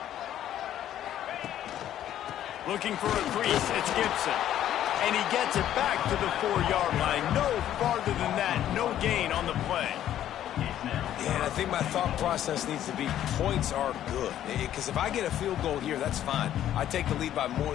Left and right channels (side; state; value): right; quieter; 11.6 dB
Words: Looking for a crease, it's Gibson. And he gets it back to the 4-yard line. No farther than that, no gain on the play. Yeah, and I think my thought process needs to be points are good. Because if I get a field goal here, that's fine. I take the lead by more